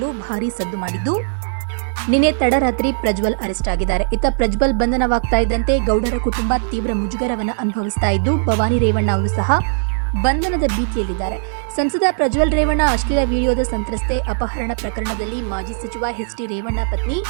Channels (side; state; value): left; silent; digital silence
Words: ಭಾರೀ ಸದ್ದು ಮಾಡಿದ್ದು, ನಿನ್ನೆ ತಡರಾತ್ರಿ ಪ್ರಜ್ವಲ್ ಅರೆಸ್ಟ್ ಆಗಿದ್ದಾರೆ. ಇತ್ತ ಪ್ರಜ್ವಲ್ ಬಂಧನವಾಗ್ತಾ ಇದ್ದಂತೆ ಗೌಡರ ಕುಟುಂಬ ತೀವ್ರ ಮುಜುಗರವನ್ನು ಅನುಭವಿಸ್ತಾ ಇದ್ದು, ಭವಾನಿ ರೇವಣ್ಣ ಅವರು ಸಹ ಬಂಧನದ ಭೀತಿಯಲ್ಲಿದ್ದಾರೆ. ಸಂಸದ ಪ್ರಜ್ವಲ್ ರೇವಣ್ಣ ಅಶ್ಲೀಲ ವಿಡಿಯೋದ ಸಂತ್ರಸ್ತೆ ಅಪಹರಣ ಪ್ರಕರಣದಲ್ಲಿ ಮಾಜಿ ಸಚಿವ ಎಚ್.ಡಿ. ರೇವಣ್ಣ ಪತ್ನಿ